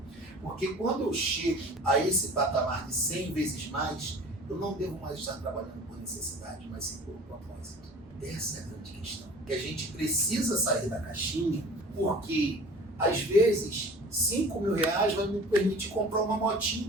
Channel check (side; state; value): both; normal; correlation 0.43